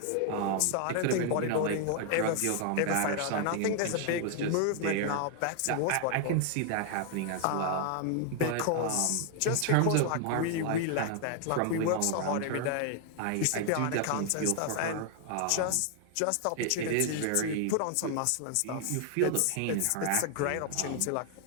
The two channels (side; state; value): both; different; correlation 0.00